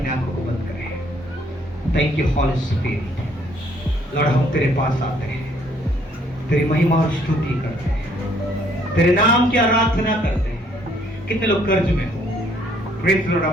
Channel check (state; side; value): normal; both; correlation 0.65